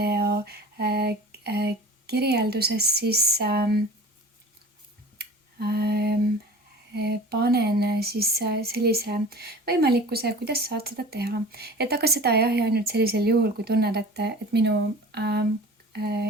kirjelduses siis panen siis sellise võimalikkuse, kuidas saad seda teha. Aga seda jah, ja ainult sellisel juhul, kui tunned, et minu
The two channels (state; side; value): normal; both; correlation 0.40